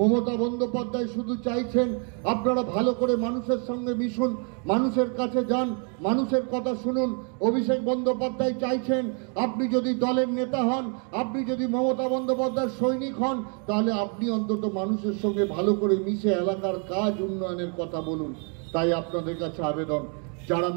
বন্দ্যোপাধ্যায় শুধু চাইছেন আপনারা ভালো করে মানুষের সঙ্গে মিশুন, মানুষের কাছে যান, মানুষের কথা শুনুন। অভিষেক বন্দ্যোপাধ্যায় চাইছেন আপনি যদি দলের নেতা হন, আপনি যদি মমতা বন্দ্যোপাধ্যায়ের সৈনিক হন, তাহলে আপনি অন্তত মানুষের সঙ্গে ভালো করে মিশে এলাকার কাজ উন্নয়নের কথা বলুন। তাই আপনাদের কাছে আবেদন, যারা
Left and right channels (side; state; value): left; quieter; 39.6 dB